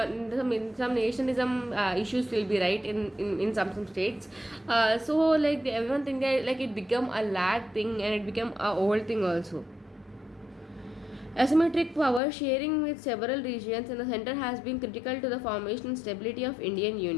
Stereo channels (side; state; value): right; drops out; at 12.2 s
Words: issues will be right in some states. So like everyone think that like it become a lag thing and it became a old thing also. Asymmetric power sharing with several regions in the center has been critical to the formation and stability of Indian